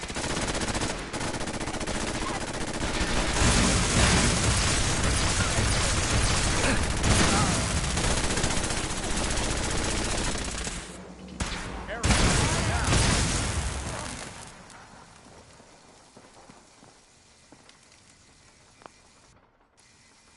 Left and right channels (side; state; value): both; identical; correlation 1.00